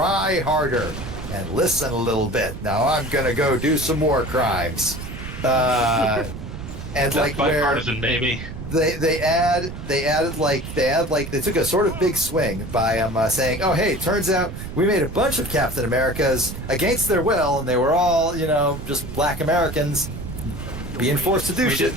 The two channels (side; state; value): right; noise; rumble, 10 dB below the sound